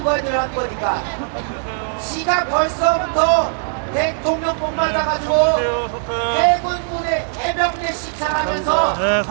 거에 들어간 거니까 지가 벌써부터 대통령뿐 맞아가지고 해군군의 해병대 시찰하면서 네,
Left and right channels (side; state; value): left; silent; digital silence